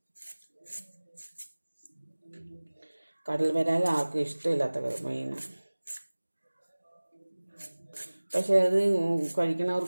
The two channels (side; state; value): both; inverted; correlation -1.00